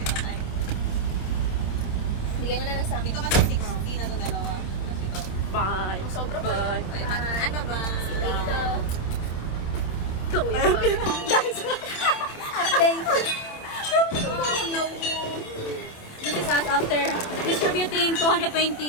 na bigay mo na lang sa amin. Dito ka sa 60 na ito dalawa. Dito. Bye. Sobra ba yun? Ay, ano ba? Si Guys, update. This is us after distributing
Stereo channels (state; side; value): late; right; 27 ms